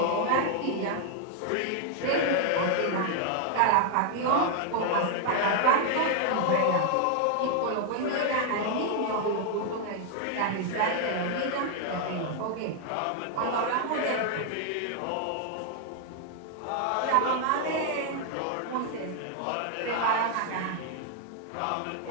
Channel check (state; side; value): different; both; correlation 0.00